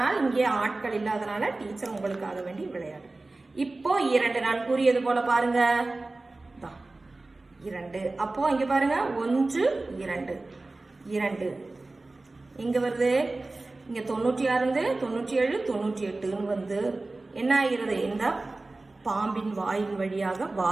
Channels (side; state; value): left; quieter; 3.2 dB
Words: இங்கே ஆட்கள் இல்லாதனால டீச்சர் உங்களுக்காக வேண்டி விளையாடு. இப்போ 2 நான் கூறியது போல பாருங்க, 2. அப்போ இங்க பாருங்க 1 2 2 எங்க வருது? இங்க 96 97 98 வந்து என்ன ஆகிறது? இந்த பாம்பின் வாயின் வழியாக